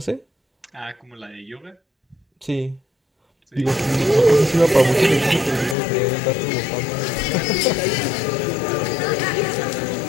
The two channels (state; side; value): drops out; right; at 5.8 s